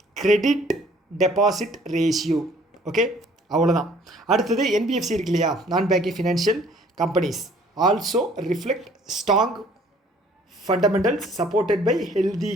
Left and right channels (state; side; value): normal; both; correlation 0.57